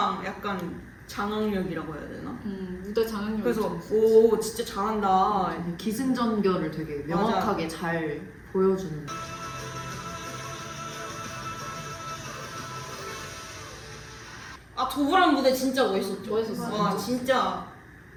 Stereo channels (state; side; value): identical; both; correlation 1.00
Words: 약간 장악력이라고 해야 되나? 무대 장악력이 그래서 좀 오 진짜 잘한다. 기승전결을 되게 명확하게 잘 보여주는. 도브란 무대 진짜 멋있었죠. 멋있었어요. 와 진짜